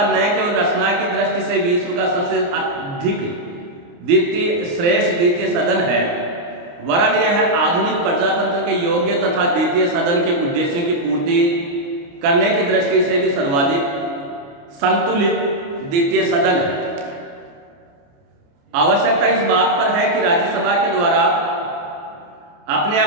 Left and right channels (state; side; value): late; left; 29 ms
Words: न केवल रचना की दृष्टि से विश्व का सबसे अधिक श्रेष्ठ द्वितीय सदन है, वरन यह आधुनिक प्रजातंत्र के योग्य तथा द्वितीय सदन के उद्देश्यों की पूर्ति करने की दृष्टि से भी सर्वाधिक संतुलित द्वितीय सदन है। आवश्यकता इस बात पर है कि राज्यसभा के द्वारा अपने